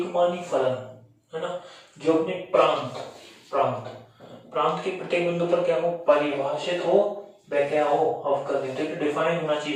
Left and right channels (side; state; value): both; identical; correlation 1.00